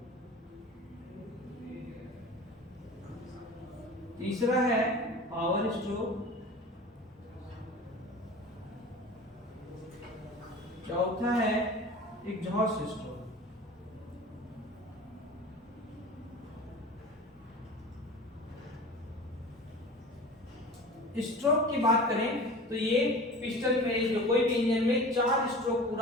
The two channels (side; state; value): both; normal; correlation 0.37